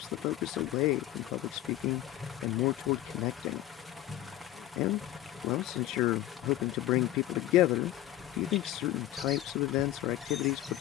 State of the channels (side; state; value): right; quieter; 14.0 dB